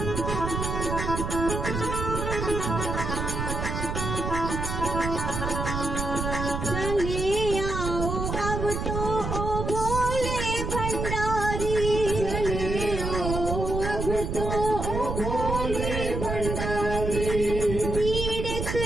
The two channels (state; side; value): noise; right; rumble, 3 dB below the sound